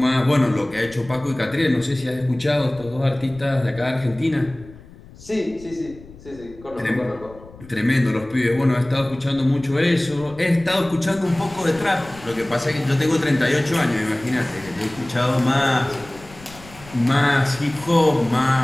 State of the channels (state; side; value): noise; left; rumble, 20 dB below the sound